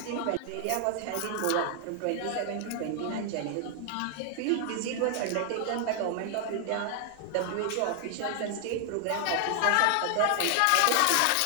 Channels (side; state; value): both; different; correlation 0.00